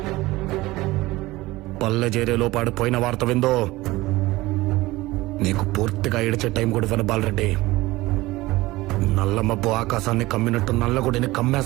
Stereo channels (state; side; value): quieter; left; 19.3 dB